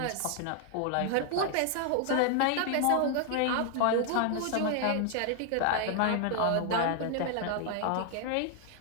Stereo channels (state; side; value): different; both; correlation 0.00